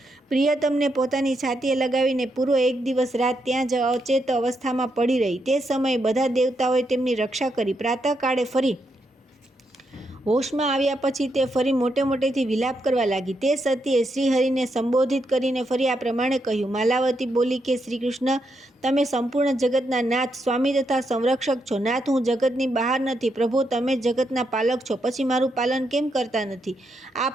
પ્રિયતમને પોતાની છાતીએ લગાવીને પૂરો 1 દિવસ રાત ત્યાં જ અચેત અવસ્થામાં પડી રહી। તે સમયે બધા દેવતાઓએ તેમની રક્ષા કરી। પ્રાતઃકાળે ફરી હોશમાં આવ્યા પછી તે ફરી મોટે મોટેથી વિલાપ કરવા લાગી। તે સતીએ શ્રીહરિને સંબોધિત કરીને ફરી આ પ્રમાણે કહ્યું। માલાવતી બોલી કે શ્રી કૃષ્ણ, તમે સંપૂર્ણ જગતના નાથ, સ્વામી તથા સંરક્ષક છો। નાથ, હું જગતની બહાર નથી। પ્રભુ, તમે જગતના પાલક છો, પછી મારું પાલન કેમ કરતા નથી? આ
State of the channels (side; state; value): both; normal; correlation 0.81